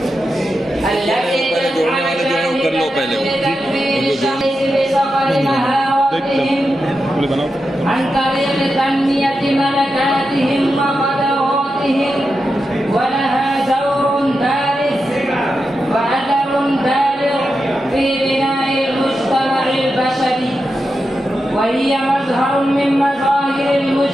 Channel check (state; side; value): normal; both; correlation 0.89